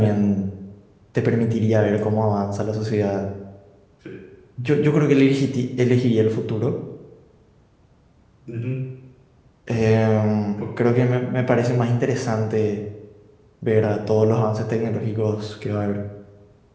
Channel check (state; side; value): identical; both; correlation 1.00